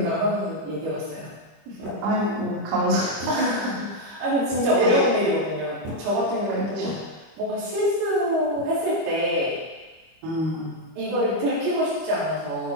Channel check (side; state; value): left; late; 25 ms